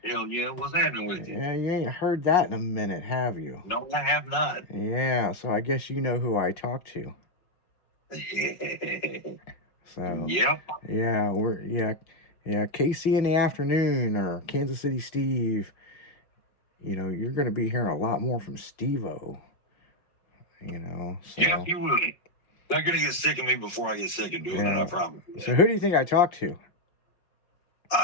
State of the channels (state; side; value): late; right; 5.4 ms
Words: Hell yeah, what's happening with you? Yeah, you ain't heard that in a minute, have you? No, I have not. Yeah, so I guess you know who I talk to. So Yep. yeah, Casey in the Afternoon or Kansas City Steve. You know, you're gonna be hearing a lot more from Steve-O. You know, so Yeah, you will. They're going to get sick of me before I get sick of doing it, I promise you that. So who do you think I talked to?